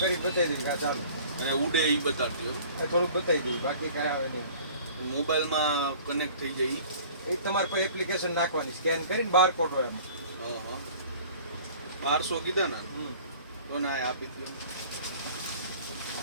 કરી બતાવી દે કે આ ચાલુ અને ઉડે ઈ બતાડજો એ થોડુંક બતાવી દઉં બાકી કાંઈ આવે નહીં મોબાઈલમાં કનેક્ટ થઈ જાય ઈ. એ તમારે કોઈ એપ્લિકેશન નાખવાની સ્કેન કરીને બારકોડ હોય એમાં હા 1200 કીધા ને તો ના આપી દો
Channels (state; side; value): inverted; both; correlation -0.48